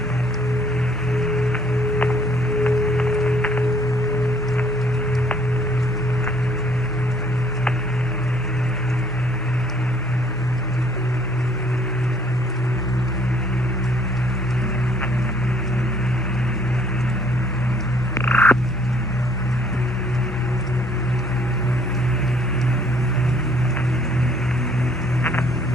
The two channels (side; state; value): both; normal; correlation 0.62